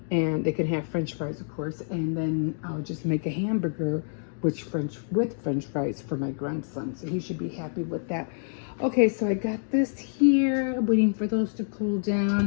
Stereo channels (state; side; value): silent; right; digital silence